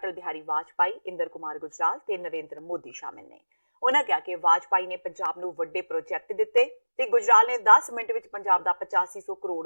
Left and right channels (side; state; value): both; inverted; correlation -1.00